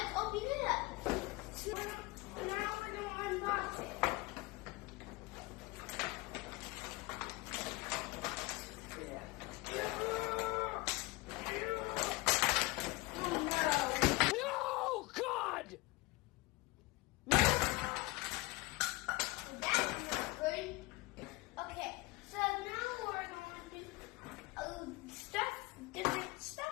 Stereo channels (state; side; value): quieter; right; 22.3 dB